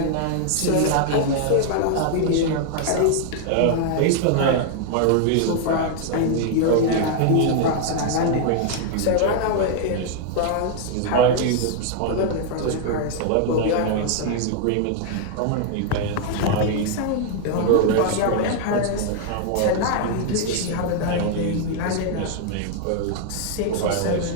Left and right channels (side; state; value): both; different; correlation 0.00